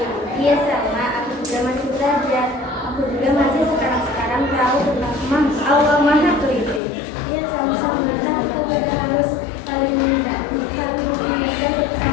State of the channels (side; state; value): right; drops out; at 6.8 s